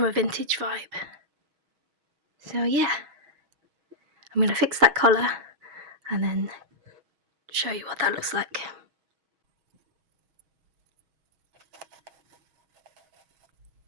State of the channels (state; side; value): late; left; 6.3 ms